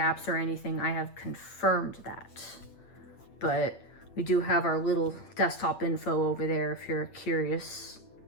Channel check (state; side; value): late; right; 8.6 ms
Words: or anything. I have confirmed that. But we do have our little desktop info over there if you're curious.